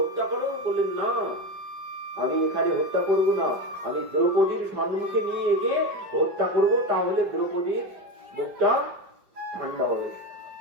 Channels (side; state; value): left; late; 5.4 ms